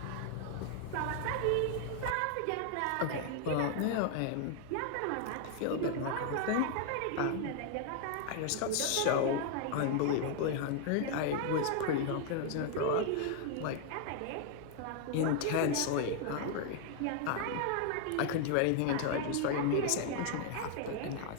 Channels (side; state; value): both; different; correlation 0.00